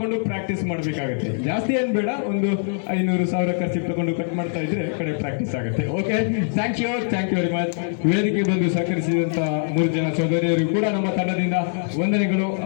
ಪ್ರಾಕ್ಟೀಸ್ ಮಾಡಬೇಕಾಗುತ್ತೆ. ಜಾಸ್ತಿ ಏನ್ ಬೇಡ, ಒಂದು 500,000 ಖರ್ಚಿಗೆ ತಗೊಂಡು ಕಟ್ ಮಾಡ್ತಾ ಇದ್ರೆ ಕಡೆ ಪ್ರಾಕ್ಟೀಸ್ ಆಗುತ್ತೆ. Okay, thank you very much. ವೇದಿಕೆ ಬಂದು ಸಹಕರಿಸಿದಂತ 3 ಜನ ಸಹೋದರಿಯರು ಕೂಡ ನಮ್ಮ ತಂಡದಿಂದ ವಂದನೆಗಳು,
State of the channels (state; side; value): silent; right; digital silence